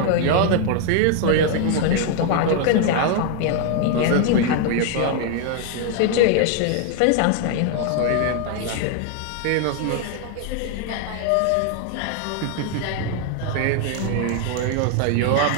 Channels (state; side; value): different; both; correlation 0.00